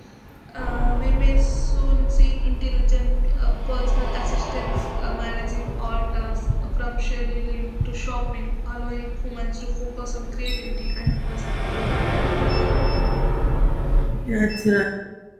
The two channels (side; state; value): both; identical; correlation 1.00